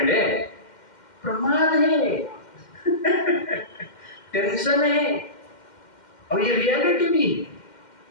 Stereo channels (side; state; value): right; late; 2.1 ms